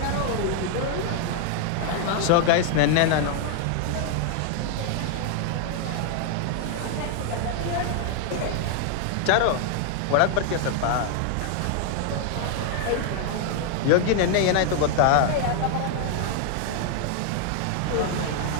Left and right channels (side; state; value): both; different; correlation 0.00